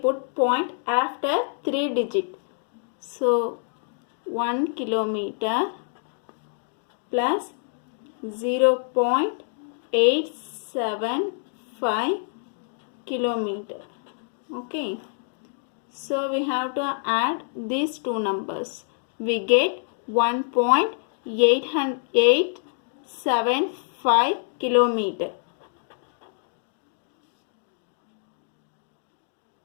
point after 3 digit. So 1 kilometer plus 0.875 kilometer. Okay, so we have to add these two numbers. We get 1.875 kilometer.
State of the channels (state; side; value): silent; right; digital silence